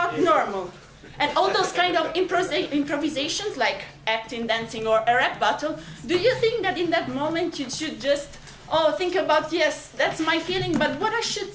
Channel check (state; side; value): identical; both; correlation 1.00